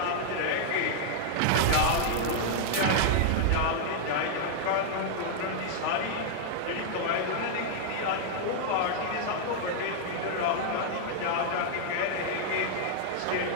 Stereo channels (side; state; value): both; different; correlation -0.01